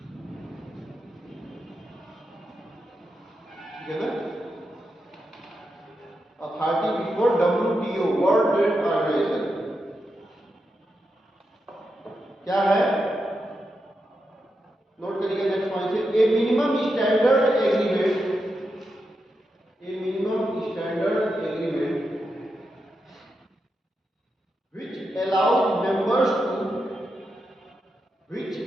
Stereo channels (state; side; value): normal; both; correlation 0.86